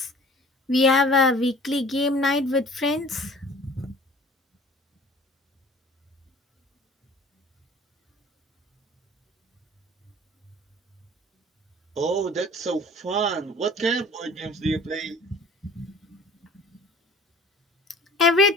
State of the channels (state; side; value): normal; both; correlation 0.47